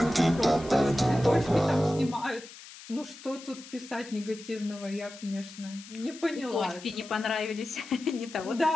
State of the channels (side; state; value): left; noise; hiss, 17 dB below the sound